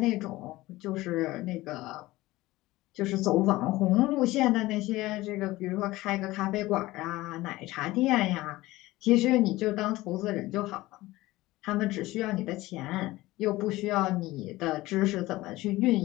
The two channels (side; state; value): right; quieter; 18.5 dB